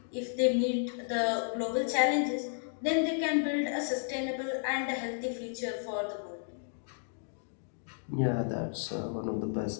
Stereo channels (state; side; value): silent; right; digital silence